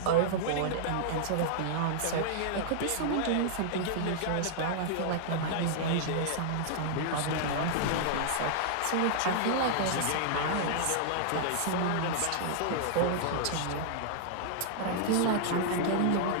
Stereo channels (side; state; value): both; different; correlation -0.01